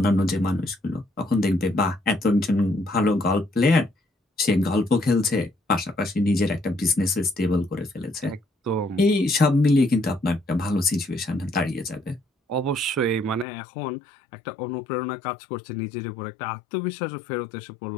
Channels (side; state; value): right; drops out; at 13.5 s